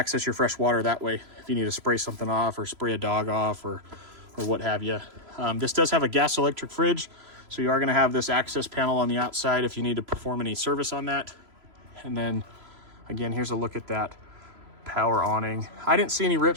your fresh water that way if you need to spray something off or spray a dog off or what have you. This does have a gas electric fridge, so you are going to have this access panel on the outside if you need to perform any service on that. And then again, here's a look at that power awning. I didn't see any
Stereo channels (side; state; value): left; late; 3.0 ms